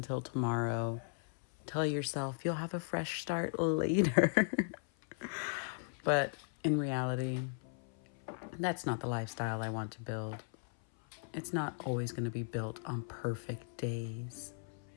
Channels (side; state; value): right; silent; 53 dB below the other